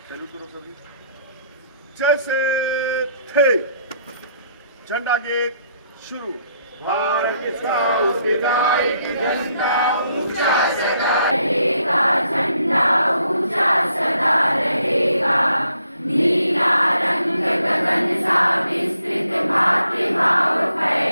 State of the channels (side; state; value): both; inverted; correlation -0.71